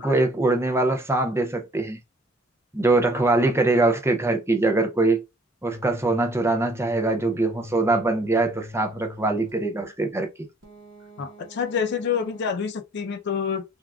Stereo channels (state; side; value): normal; both; correlation 0.57